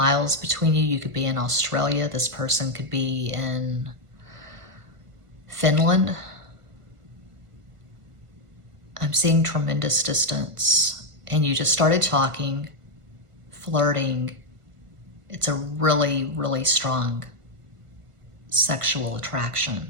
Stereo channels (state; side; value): late; left; 1.5 ms